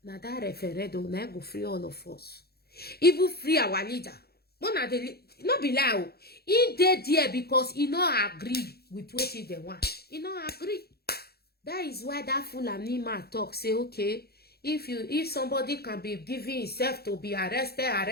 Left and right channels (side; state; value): right; late; 0.46 ms